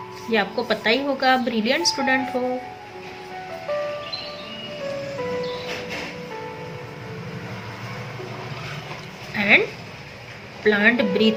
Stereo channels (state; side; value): identical; both; correlation 1.00